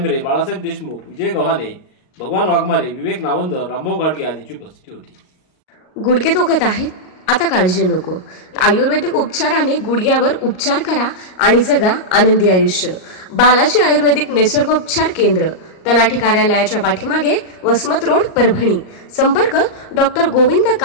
बाळासाहेब देशमुख, विजय गव्हाणे, भगवान वाघमारे, विवेक नावंदर, रामभाऊ गाडगे आदींची उपस्थिती होती। गुडघे दुखत आहेत? आता काळजी नको। आयुर्वेदिक उपचाराने गुडघ्यावर उपचार करा आणि जगा आनंदी आयुष्य। बालाजी आयुर्वेदिक निसर्गोपचार केंद्र, तलाठी कार्यालयाच्या पाठीमागे, वसमत रोड, परभणी। संपर्क डॉक्टर गोविंद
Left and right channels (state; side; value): late; right; 38 ms